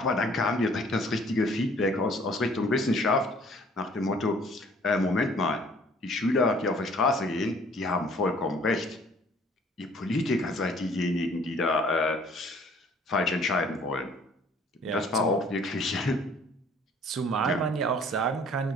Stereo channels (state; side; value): normal; both; correlation 0.56